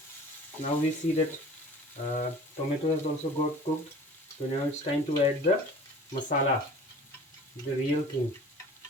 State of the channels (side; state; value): both; normal; correlation 0.44